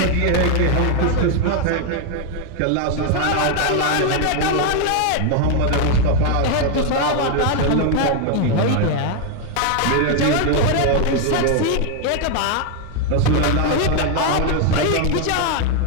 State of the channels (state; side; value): different; both; correlation 0.01